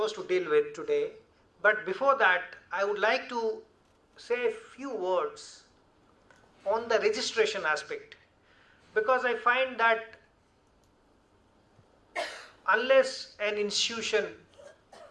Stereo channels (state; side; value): identical; both; correlation 1.00